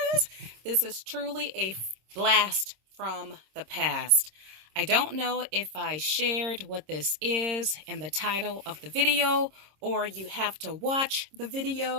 this is truly a blast from the past. I don't know if I shared what this is in the title of the video, or you have to watch the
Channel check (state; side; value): late; left; 26 ms